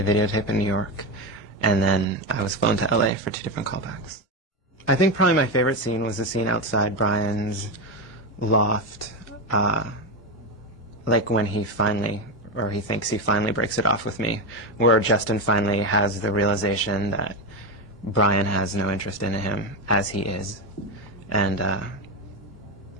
videotape in New York. And then I was flown to LA for 2 different callbacks. I think probably my favorite scene was the scene outside Brian's loft, like when he finally, or he thinks he finally breaks it off with me, where Justin finally has the realization that Brian has no interest in him as he is. And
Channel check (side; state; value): both; normal; correlation 0.13